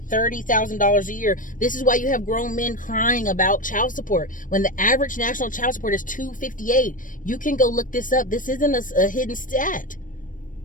$30,000 a year. This is why you have grown men crying about child support. When the average national child support is $258, you can go look this up. This isn't a hidden stat.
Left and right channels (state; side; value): late; right; 0.38 ms